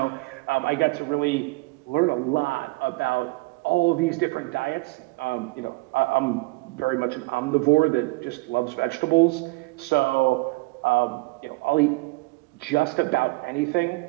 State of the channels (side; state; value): left; quieter; 24.0 dB